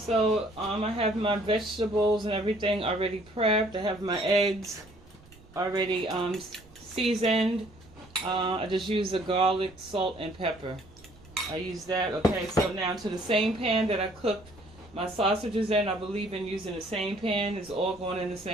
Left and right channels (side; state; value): right; noise; rumble, 25 dB below the sound